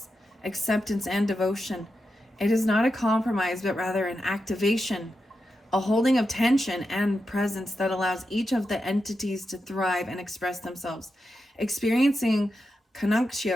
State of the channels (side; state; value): both; normal; correlation 0.88